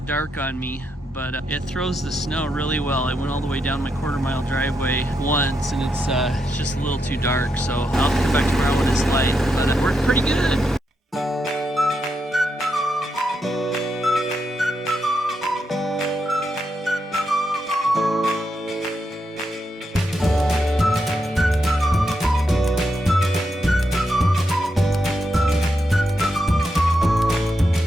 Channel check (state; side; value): normal; both; correlation 0.82